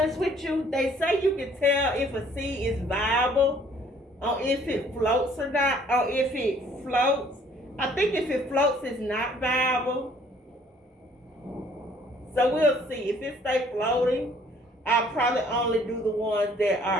with you, they say you can tell if a seed is viable or if it floats or not, or if it floats. I think if it floats, it's not viable. So we'll see. If it stays floating, I'll probably only do the ones that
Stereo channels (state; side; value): normal; both; correlation 0.59